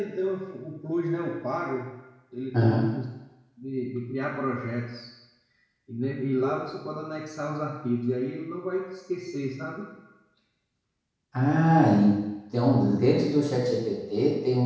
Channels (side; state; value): both; identical; correlation 1.00